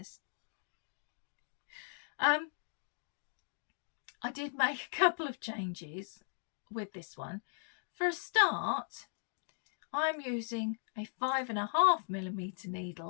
I did make a couple of changes with this one. For a start, I'm using a 5.5mm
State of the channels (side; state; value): right; silent; digital silence